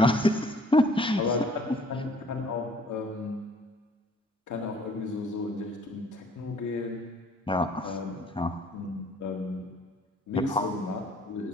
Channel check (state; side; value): normal; both; correlation 0.57